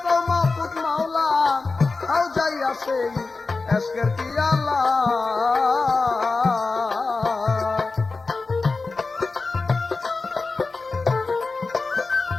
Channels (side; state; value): right; quieter; 3.9 dB